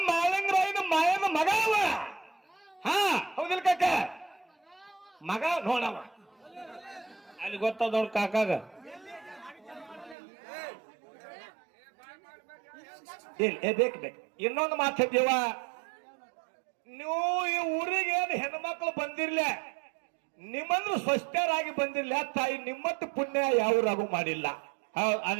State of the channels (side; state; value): left; drops out; at 10.2 s